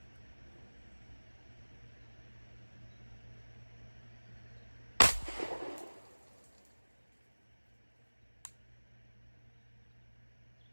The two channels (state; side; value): inverted; both; correlation -1.00